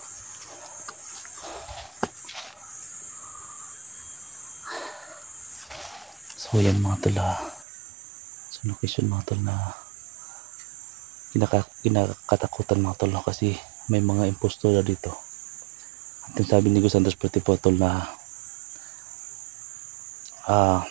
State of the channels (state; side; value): drops out; left; at 7.7 s